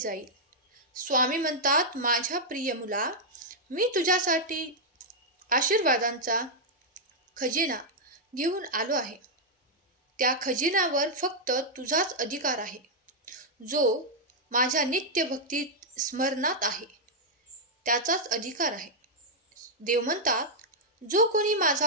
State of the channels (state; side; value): normal; both; correlation -0.04